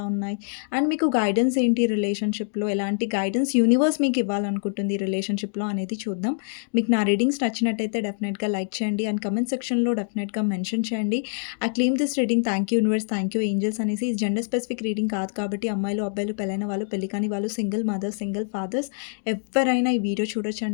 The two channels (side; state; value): right; silent; digital silence